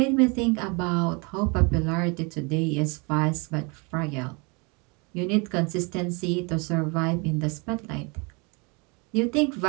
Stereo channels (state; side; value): quieter; left; 30.5 dB